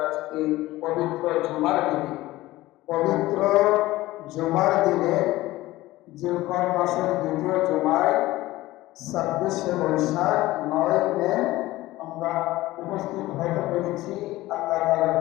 আজকে পবিত্র জুমার দিনে জিলকদ মাসের দ্বিতীয় জুমায় 26শে বৈশাখ 9 মে আমরা উপস্থিত হতে পেরেছি। আল্লাহ তাআলার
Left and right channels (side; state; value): right; quieter; 17.5 dB